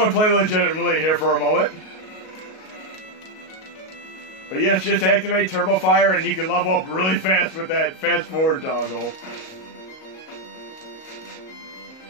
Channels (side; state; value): right; late; 38 ms